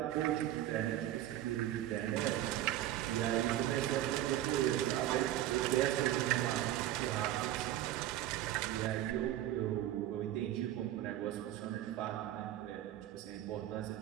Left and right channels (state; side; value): quieter; left; 13.3 dB